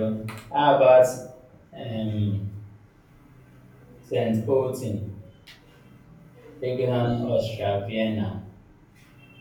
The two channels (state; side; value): identical; both; correlation 1.00